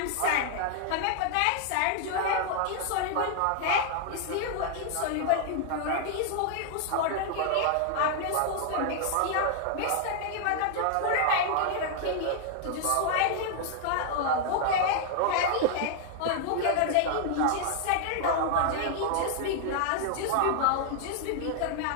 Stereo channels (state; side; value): different; both; correlation 0.00